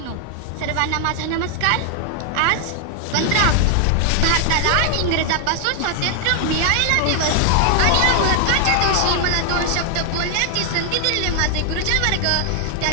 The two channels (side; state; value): both; different; correlation 0.00